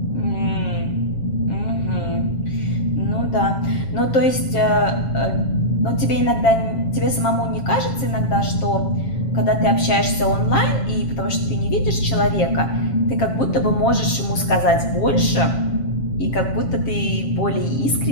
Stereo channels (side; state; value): right; late; 7.4 ms